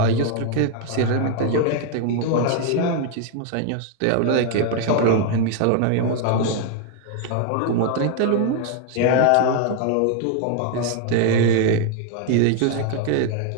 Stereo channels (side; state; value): both; different; correlation 0.00